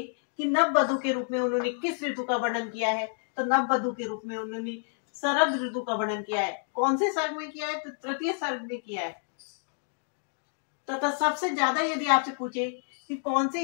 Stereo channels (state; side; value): silent; right; 59 dB below the other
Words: कि नववधु के रूप में उन्होंने किस ऋतु का वर्णन किया है, तो नववधु के रूप में उन्होंने शरद ऋतु का वर्णन किया है। कौन से सर्ग में किया है? तो तृतीय सर्ग में किया है। तथा सबसे ज्यादा यदि आपसे पूछे कि कौन